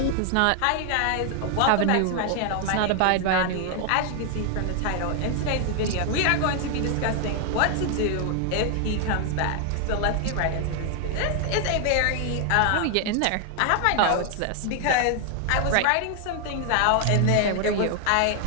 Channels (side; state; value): both; different; correlation 0.00